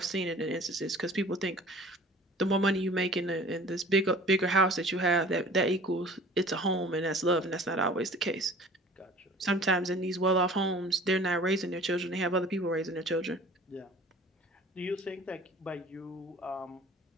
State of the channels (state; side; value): normal; both; correlation 0.46